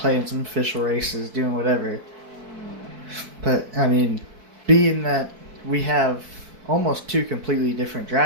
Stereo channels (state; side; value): late; left; 4.6 ms